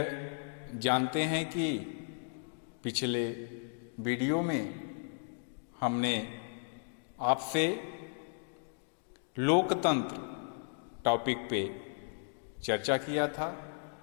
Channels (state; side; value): silent; right; digital silence